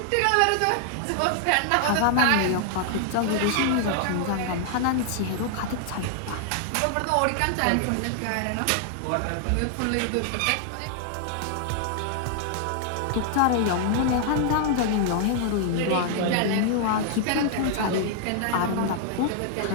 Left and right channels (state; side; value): different; both; correlation 0.00